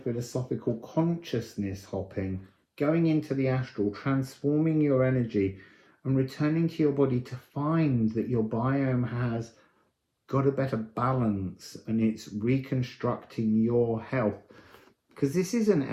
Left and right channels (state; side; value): identical; both; correlation 1.00